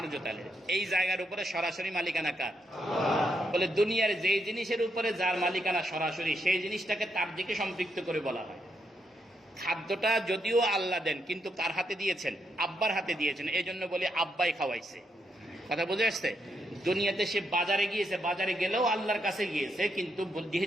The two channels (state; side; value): normal; both; correlation 0.79